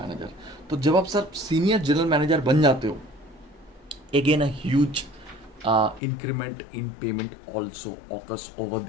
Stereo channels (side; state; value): right; drops out; at 6.0 s